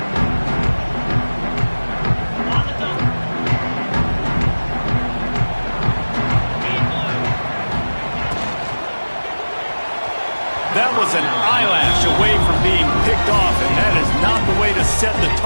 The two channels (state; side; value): inverted; both; correlation -1.00